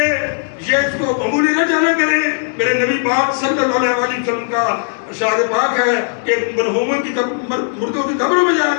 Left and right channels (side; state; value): right; silent; digital silence